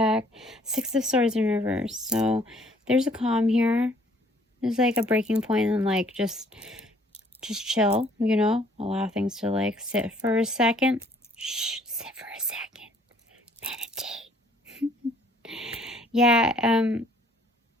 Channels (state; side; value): normal; both; correlation 0.61